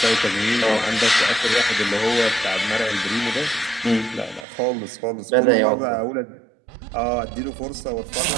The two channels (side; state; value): left; drops out; at 4.5 s